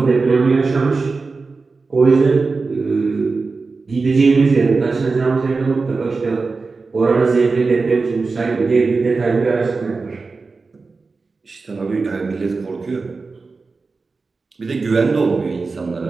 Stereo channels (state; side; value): quieter; left; 4.2 dB